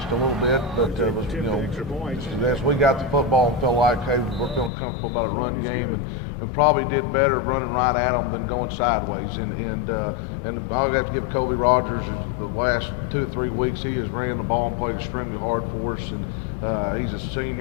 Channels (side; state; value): right; drops out; at 4.7 s